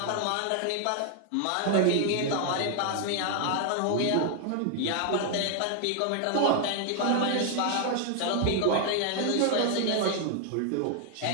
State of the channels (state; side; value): different; both; correlation 0.00